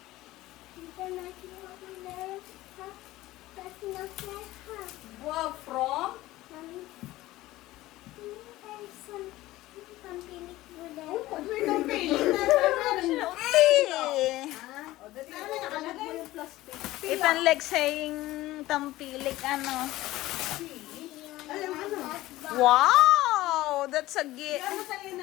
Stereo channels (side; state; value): right; quieter; 17.1 dB